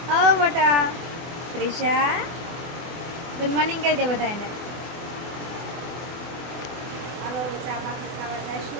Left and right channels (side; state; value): left; late; 24 ms